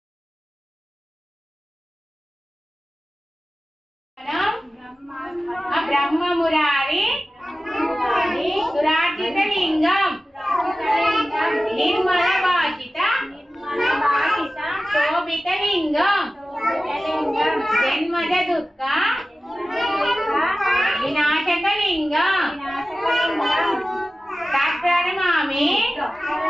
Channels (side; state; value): both; normal; correlation 0.95